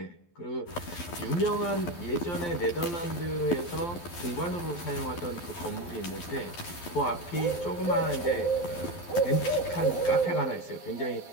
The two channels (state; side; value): late; right; 12 ms